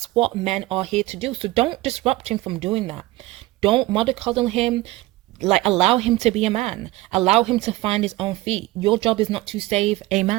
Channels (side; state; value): left; quieter; 19.0 dB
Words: what men are here to do. So don't disrupt him from doing that. Don't mollycoddle him. Like, allow him to be a man. Allow him to find his own feet. Your job is not to save a